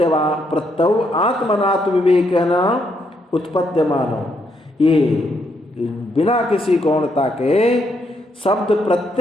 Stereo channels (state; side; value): normal; both; correlation 0.76